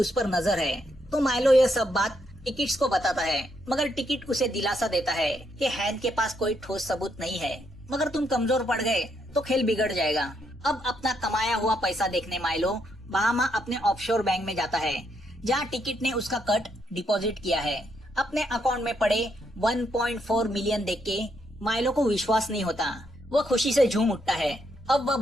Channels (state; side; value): normal; both; correlation 0.76